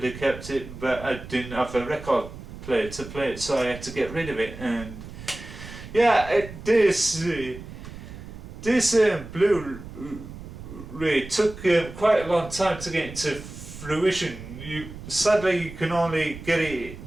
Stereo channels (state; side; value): noise; right; rumble, 13 dB below the sound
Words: have kept it, but I didn't have a record player to play it, so I had to get rid of it. And yeah, this Blu-ray took quite a long time to get into fruition. Sadly you can only get it